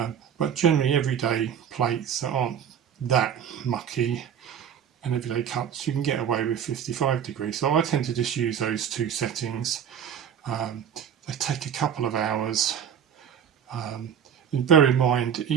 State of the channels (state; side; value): quieter; left; 8.4 dB